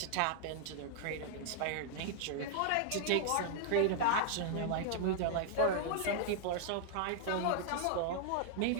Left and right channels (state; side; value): different; both; correlation -0.01